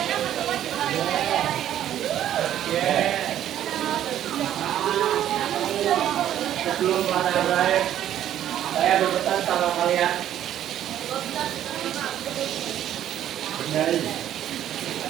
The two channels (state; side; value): quieter; left; 11.3 dB